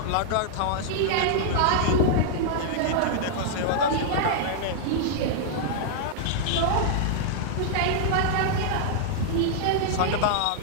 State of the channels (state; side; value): different; both; correlation -0.01